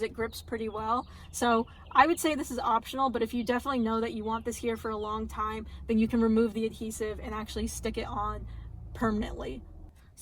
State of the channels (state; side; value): identical; both; correlation 1.00